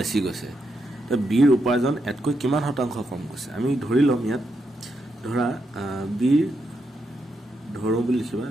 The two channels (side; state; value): both; normal; correlation 0.82